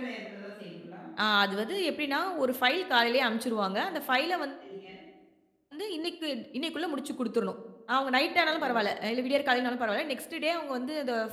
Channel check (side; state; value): both; identical; correlation 1.00